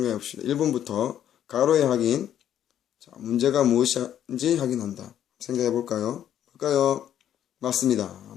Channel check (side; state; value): right; quieter; 10.5 dB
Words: 봅시다. 1번부터 가로의 확인, 자, 문제가 무엇인지 확인한다. 생각해 볼까요? 맞습니다.